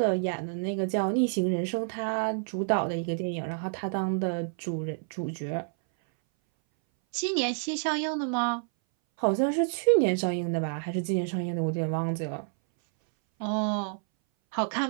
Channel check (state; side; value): silent; left; 59 dB below the other